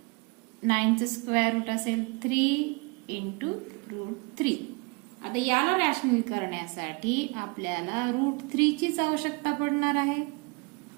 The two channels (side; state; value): left; quieter; 30.5 dB